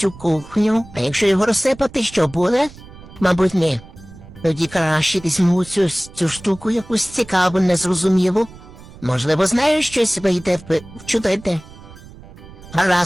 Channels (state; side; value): noise; right; rumble, 19 dB below the sound